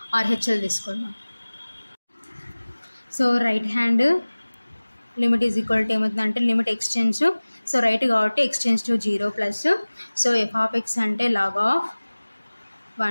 RHL తీసుకుందాం. So right hand limit is equal to ఏమవుతుందంటే లిమిట్ ఎక్స్టెన్స్, సో రైట్ కాబట్టి ఎక్స్టెన్స్ to 0 plus, so f of x అంటే log of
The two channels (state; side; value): inverted; both; correlation -1.00